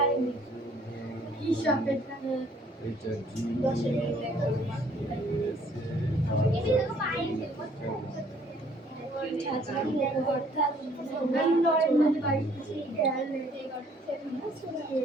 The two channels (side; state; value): both; normal; correlation 0.61